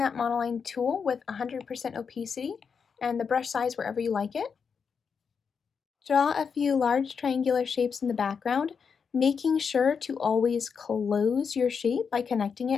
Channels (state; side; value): quieter; right; 6.1 dB